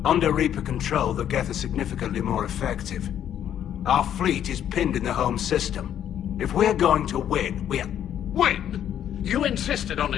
Under Reaper control, the Geth are significantly more effective. Our fleet is pinned in the home system. If we're going to win, Win? You insisted on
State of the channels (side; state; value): right; quieter; 10.1 dB